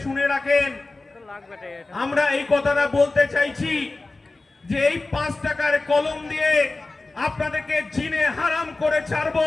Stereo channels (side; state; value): right; quieter; 3.3 dB